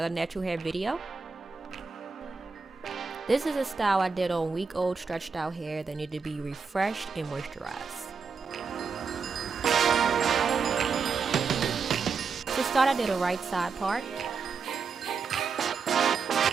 natural hair video. This is a style I did on week-old stretched out hair that needed to be refreshed and moisturized. To start, I did a right side part.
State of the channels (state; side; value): quieter; left; 5.3 dB